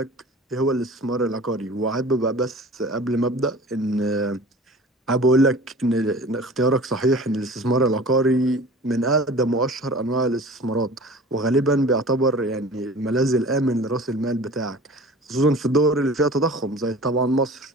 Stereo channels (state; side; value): normal; both; correlation 0.41